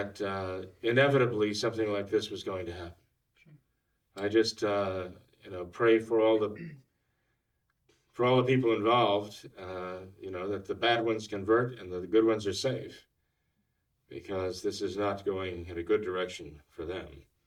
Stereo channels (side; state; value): both; identical; correlation 1.00